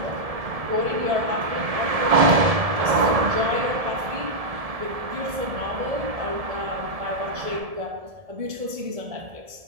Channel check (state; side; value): late; left; 1.7 ms